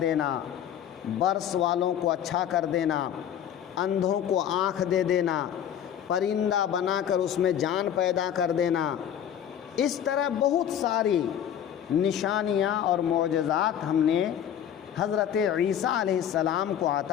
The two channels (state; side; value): quieter; right; 9.6 dB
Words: برس والوں کو اچھا کر دینا، اندھوں کو آنکھ دے دینا، پرندہ بنا کر اس میں جان پیدا کر دینا، اس طرح بہت ساری نشانیاں اور معجزات ہم نے حضرت عیسیٰ علیہ السلام کو